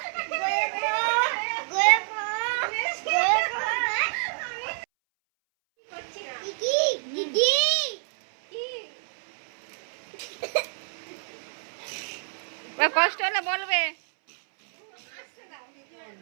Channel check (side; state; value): left; silent; 60 dB below the other